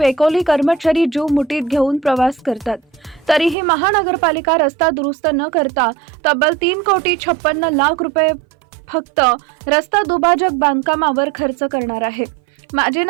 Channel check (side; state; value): left; drops out; at 3.6 s